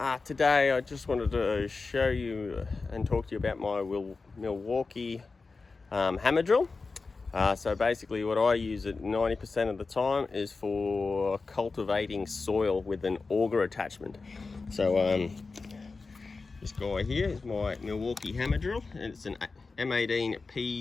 Today I just wanted to show you and talk to you about my Milwaukee hammer drill. So basically what I use it 90% of the time is for cultivating soil with an auger attachment. So this guy here is my Milwaukee hammer drill, and it's an M18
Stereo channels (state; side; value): quieter; right; 4.1 dB